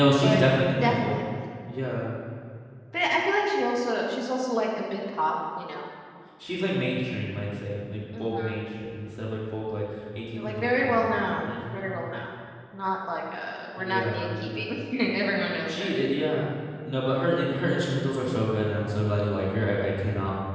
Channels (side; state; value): both; identical; correlation 1.00